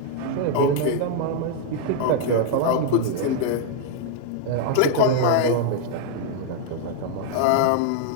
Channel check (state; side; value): different; both; correlation -0.01